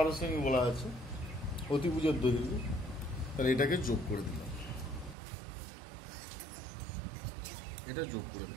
সেমি বলা আছে, অতিভুজের দৈর্ঘ্য। তাহলে এটাকে যোগ করে দিলাম, এটা যোগ করে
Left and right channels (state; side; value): drops out; left; at 5.2 s